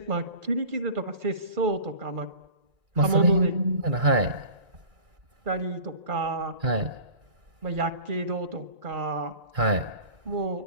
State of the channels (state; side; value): late; left; 2.3 ms